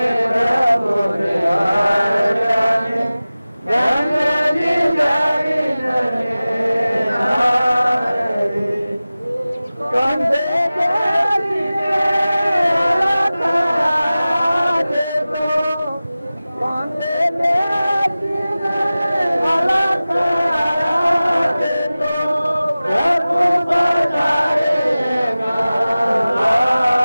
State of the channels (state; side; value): inverted; both; correlation -0.97